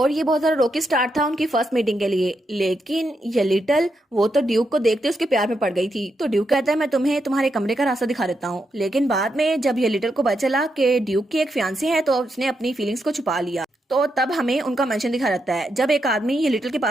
ये बहुत ज्यादा रोकी स्टार्ट था उनकी फर्स्ट मीटिंग के लिए, लेकिन ये लिटिल वो तो ड्यूक को देखते उसके प्यार में पड़ गई थी। तो ड्यूक कहता है मैं तुम्हें तुम्हारे कमरे का रास्ता दिखा देता हूँ, लेकिन बाद में जब ये लिटिल को पता चला कि ड्यूक की एक फियांसी है तो उसने अपनी फीलिंग्स को छुपा लिया। तो तब हमें उनका मेंशन दिखा रहता है जब एक आदमी ये लिटिल के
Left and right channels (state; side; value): normal; both; correlation 0.83